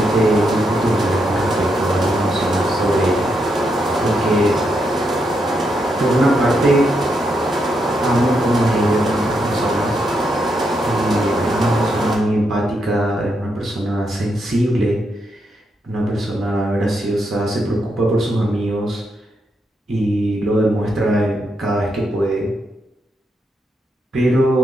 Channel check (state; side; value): normal; both; correlation 0.81